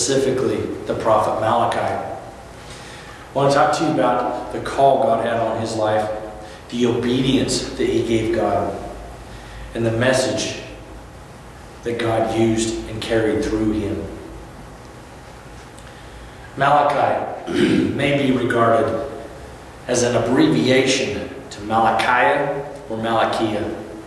the prophet Malachi. I want to talk to you about the call God had on his life, the obedience that he gave God, and the message that God used and carried through him. Malachi may be regarded as an abbreviation to Malachi or Malachiah,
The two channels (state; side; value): identical; both; correlation 1.00